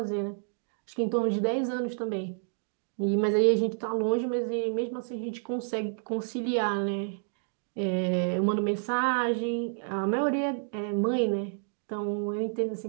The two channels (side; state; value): left; silent; digital silence